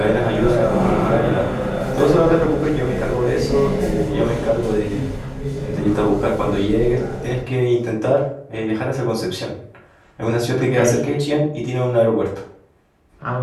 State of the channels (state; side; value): identical; both; correlation 1.00